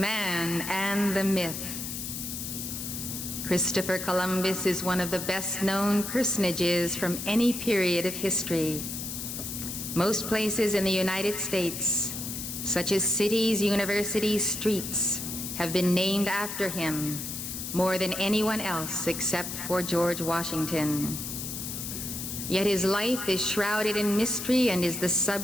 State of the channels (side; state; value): left; noise; hiss, 6 dB below the sound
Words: and the myth. Christopher Columbus is one of the best-known personages from any period of history. Most places in the United States, such as cities, universities, streets, have been named after him more than anyone else except for George Washington. Yet his life is shrouded in mystery and is the